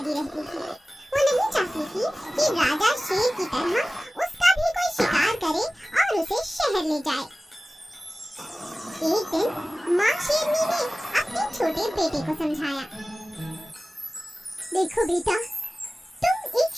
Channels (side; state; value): both; normal; correlation 0.97